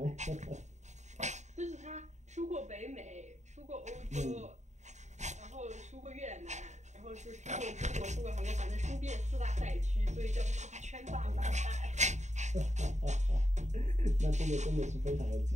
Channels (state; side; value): late; left; 0.34 ms